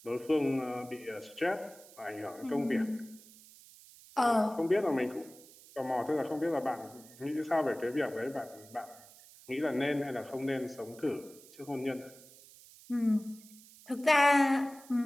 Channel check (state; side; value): noise; right; hiss, 22 dB below the sound